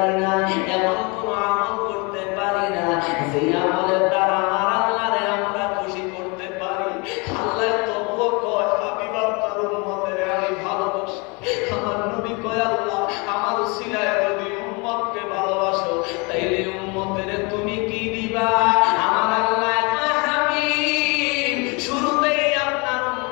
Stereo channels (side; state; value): right; quieter; 29.5 dB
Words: না, এমন কোন আমল করতে পারি না যে আমলের দ্বারা আমার আল্লাহরে আমরা খুশি করতে পারি। আল্লাহ তবুও কয় হাবিব আপনার উম্মতের আমি ভালোবাসি। আমার নবী কয় আল্লাহ আমার উসিলায় যদি উম্মতকে ভালোবাসো তাইলে উম্মতের তুমি কি দিবা? আমার আল্লাহ কয় হাবিব শুরুতেই আপনার